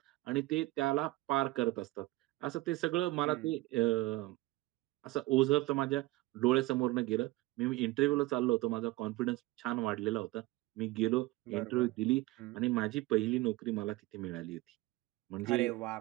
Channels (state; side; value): quieter; left; 19.3 dB